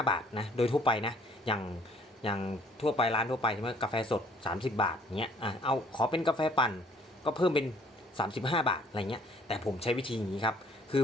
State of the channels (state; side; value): normal; both; correlation 0.59